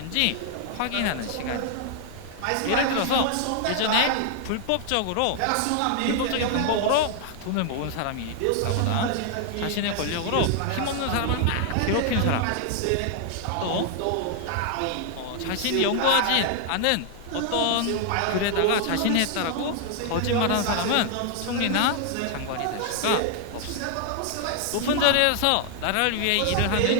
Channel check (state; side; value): different; both; correlation 0.00